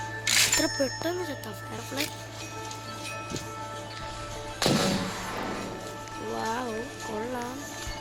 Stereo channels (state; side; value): identical; both; correlation 1.00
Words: എത്ര പെട്ടെന്ന് ചത്ത ഫയർഫ്ലൈ. വാവ് കൊള്ളാം.